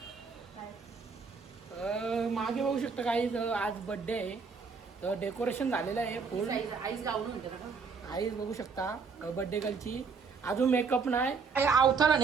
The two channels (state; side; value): quieter; left; 5.2 dB